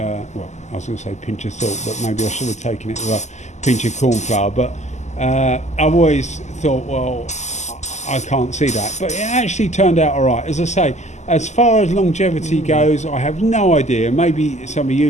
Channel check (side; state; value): right; late; 0.33 ms